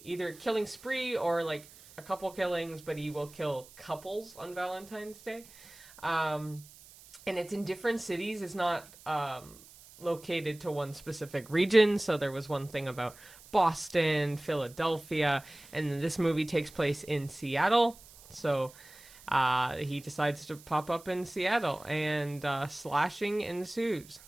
killing spree or like a couple killings, but he will kill couples on Valentine's Day. And it's in different cities. It's not located to one specific region. So there was one thing about Boston, Philadelphia, and this movie takes place in Seattle. So he decides to pop up in Seattle, and slashing ensues.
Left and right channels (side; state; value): right; noise; hiss, 21 dB below the sound